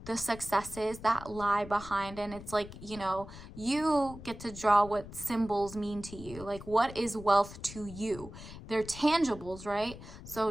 the successes that lie behind. And it's like, you know, you get to draw what symbols mean to you. Like, what is wealth to you? They're tangibles, right? So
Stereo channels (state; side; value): noise; left; rumble, 14 dB below the sound